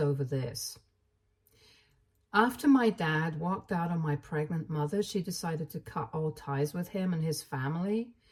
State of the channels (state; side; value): identical; both; correlation 1.00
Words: this. After my dad walked out on my pregnant mother, she decided to cut all ties with him and his family